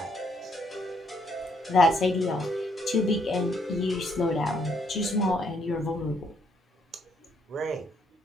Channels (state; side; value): normal; both; correlation 0.72